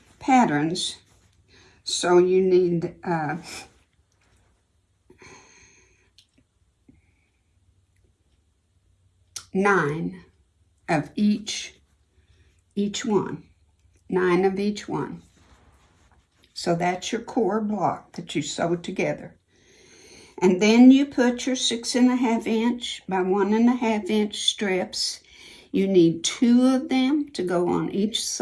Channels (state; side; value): identical; both; correlation 1.00